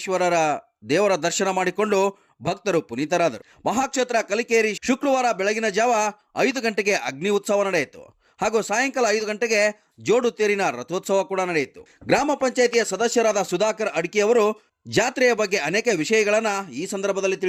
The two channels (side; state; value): both; identical; correlation 1.00